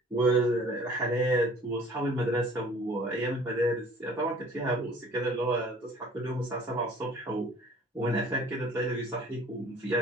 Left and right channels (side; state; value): both; normal; correlation 0.51